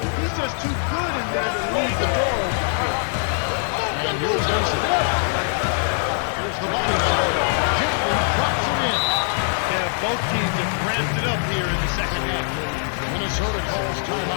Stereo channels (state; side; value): silent; right; 64 dB below the other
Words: He's just too good in there to leave the door open. And here's Mason. Here's the body. Gently drops it in. Yeah, both teams have ramped it up here in the second half. Minnesota calls